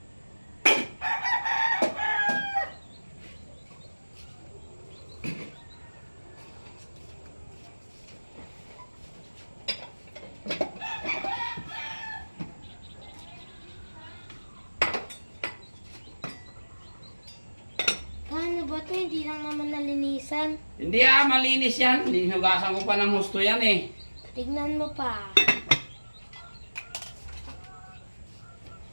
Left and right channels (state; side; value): inverted; both; correlation -1.00